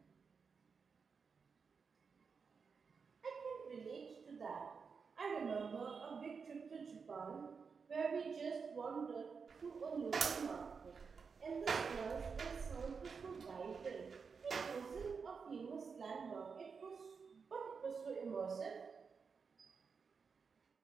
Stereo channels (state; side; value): quieter; left; 5.5 dB